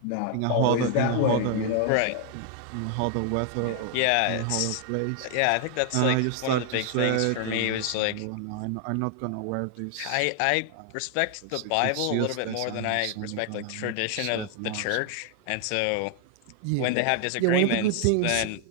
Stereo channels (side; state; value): both; different; correlation 0.00